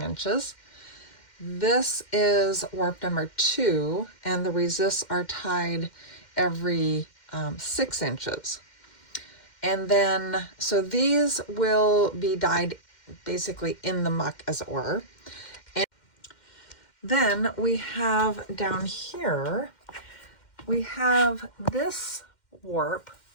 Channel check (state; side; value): late; right; 2.1 ms